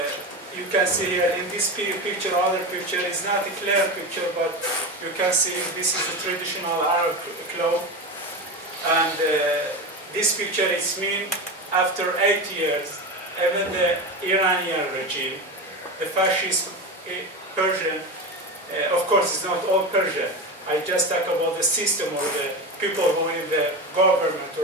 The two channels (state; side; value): normal; both; correlation 0.22